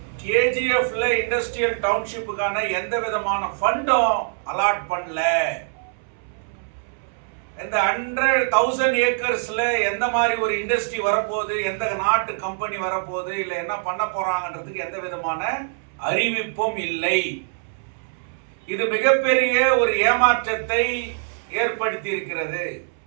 கேஜிஎஃப்ல இண்டஸ்ட்ரியல் டவுன்ஷிப்புக்கான எந்த விதமான ஃபண்டும் அலாட் பண்ணல. இந்த 100,000 ஏக்கர்ஸ்ல எந்த மாதிரி ஒரு இண்டஸ்ட்ரி வரப்போகுது, எந்த நாட்டு கம்பெனி வரப்போகுது, இல்லை என்ன பண்ண போறாங்கன்றதுக்கு எந்த விதமான அறிவிப்பும் இல்லை. இது மிகப்பெரிய ஒரு ஏமாற்றத்தை ஏற்படுத்தி இருக்கிறது.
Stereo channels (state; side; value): silent; left; 63 dB below the other